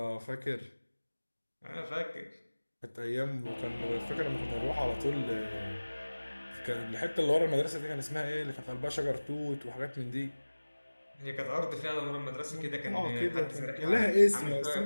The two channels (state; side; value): inverted; both; correlation -1.00